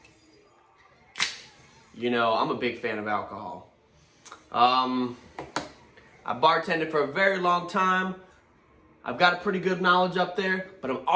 I'm a big fan of alcohol. I bartended for a very long time. I've got a pretty good knowledge up there, but I'm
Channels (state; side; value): identical; both; correlation 1.00